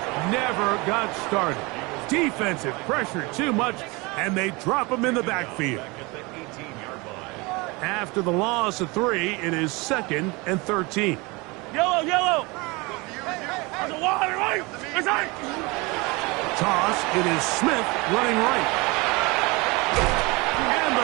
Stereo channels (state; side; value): quieter; left; 25.6 dB